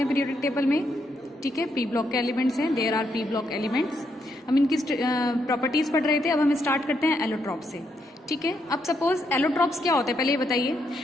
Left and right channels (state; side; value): normal; both; correlation 0.78